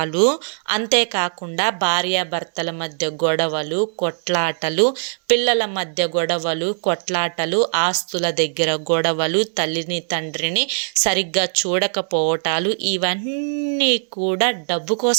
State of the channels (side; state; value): left; silent; 65 dB below the other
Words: అంతేకాకుండా భార్యాభర్తల మధ్య గొడవలు, కొట్లాటలు, పిల్లల మధ్య గొడవలు, కొట్లాటలు, ఆస్తుల దగ్గర గొడవలు, తల్లిని తండ్రిని సరిగ్గా చూడకపోవటాలు, ఇవన్నీ కూడా డబ్బు